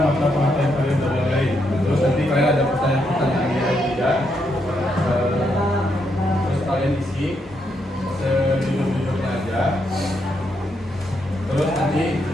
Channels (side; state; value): both; normal; correlation 0.79